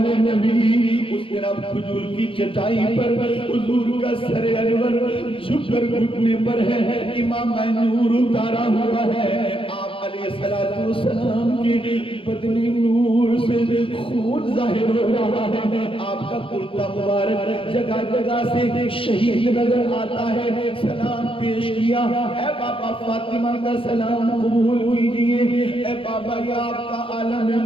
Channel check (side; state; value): right; late; 0.26 ms